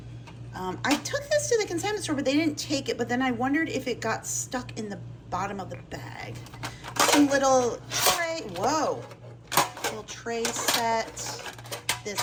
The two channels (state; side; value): identical; both; correlation 1.00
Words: I took this to the consignment store, but they didn't take it. But then I wondered if it got stuck in the bottom of the bag. Some little tray, whoa, little tray set.